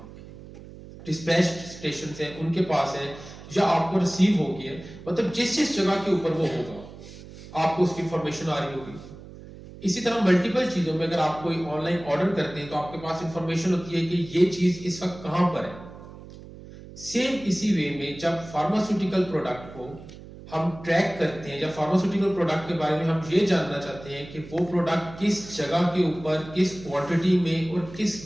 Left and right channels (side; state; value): right; noise; hum, 16 dB below the sound